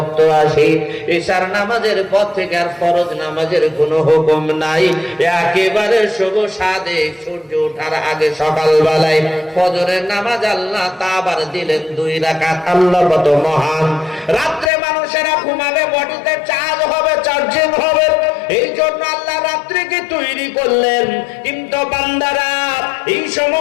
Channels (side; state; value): right; drops out; at 14.7 s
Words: আসে, এশার নামাজের পর থেকে আর ফরজ নামাজের কোনো হুকুম নাই। একেবারে শুভ সাদে সূর্য ওঠার আগে সকালবেলায় ফজরের নামাজ আল্লাহ তা আবার দিলেন 2 রাকাত। আল্লাহ কত মহান। রাত্রে মানুষেরা ঘুমাবে, বডিতে চার্জ হবে, চার্জিং হবে, এই জন্য আল্লাহ রাত্রিকে তৈরি করলেন। কিন্তু বান্দারা, এই